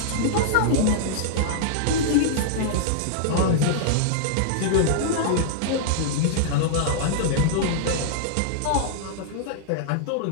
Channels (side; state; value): both; different; correlation -0.01